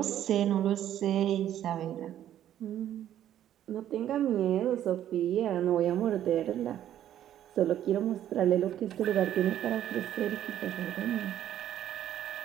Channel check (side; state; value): left; quieter; 11.4 dB